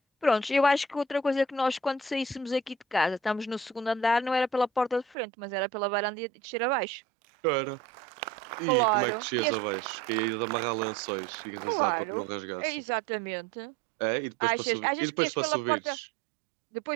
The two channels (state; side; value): drops out; left; at 5.2 s